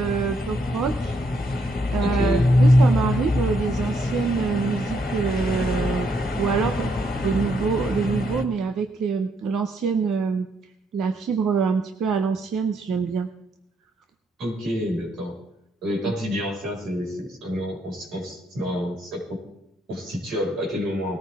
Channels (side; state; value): both; normal; correlation 0.74